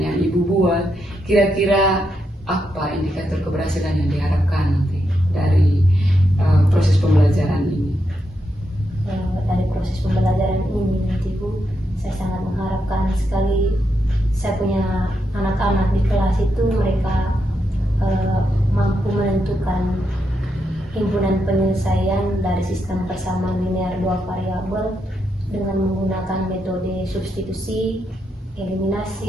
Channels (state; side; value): normal; both; correlation 0.83